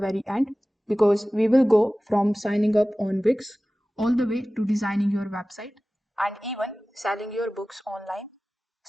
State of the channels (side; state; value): both; normal; correlation 0.97